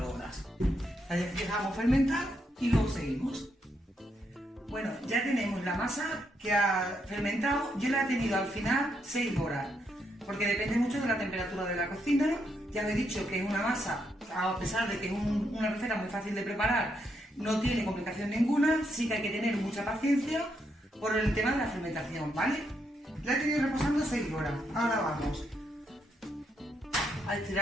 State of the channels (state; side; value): normal; both; correlation 0.78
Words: horas. La dejamos fermentar y luego seguimos. Bueno, ya tenemos la masa que ha fermentado. Yo la he tenido al final 6 horas. Porque depende mucho de la temperatura de la cocina. Ya os he dicho que es una masa, a pesar de que es una receta muy fácil de preparar, no tiene complicación ninguna. Sí que hay que tener mucha paciencia por el tema de la fermentación, ¿vale? La he tenido reposando 6 horas. Ahora vamos a